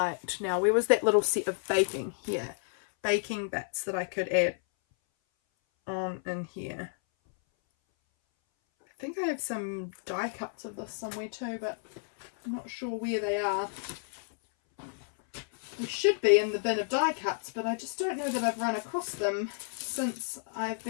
now, where was that little set of baking? Here. Baking bits that I could add on in here. I think I have some die cuts of this somewhere too, but I'm not sure where they are. They should be in the bin of die cuts, but I just don't know that I've run across them since I've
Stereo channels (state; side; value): silent; right; 57 dB below the other